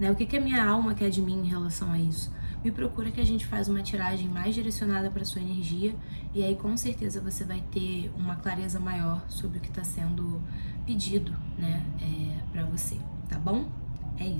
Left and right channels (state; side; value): inverted; both; correlation -1.00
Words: O que a minha alma quer de mim em relação a isso? me procura que a gente faz uma tiragem mais direcionada para sua energia e aí com certeza você vai ter uma clareza maior sobre o que está sendo pedido, né, para você, tá bom? É